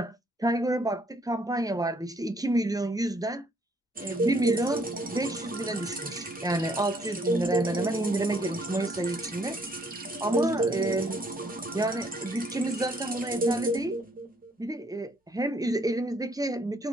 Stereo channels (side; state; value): both; normal; correlation 0.66